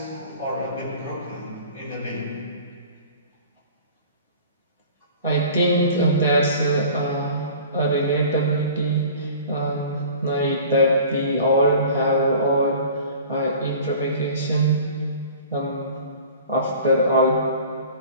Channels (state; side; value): inverted; both; correlation -0.44